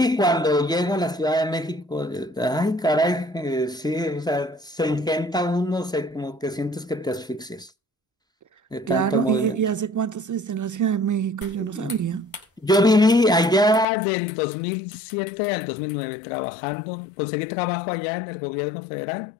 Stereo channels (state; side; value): drops out; right; at 13.9 s